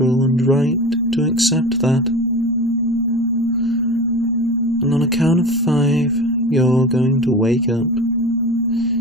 and right to accept that. And on a count of 5, you're going to wake up,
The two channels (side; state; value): both; normal; correlation 0.33